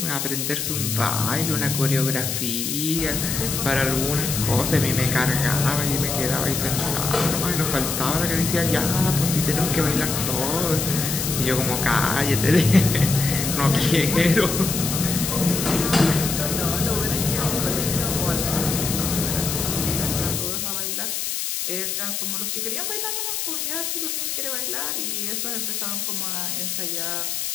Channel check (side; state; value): left; noise; hiss, 2 dB below the sound